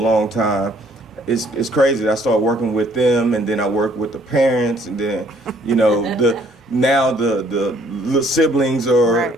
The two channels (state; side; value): normal; both; correlation 0.62